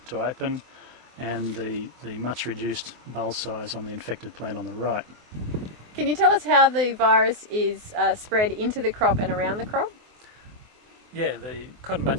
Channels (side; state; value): left; late; 24 ms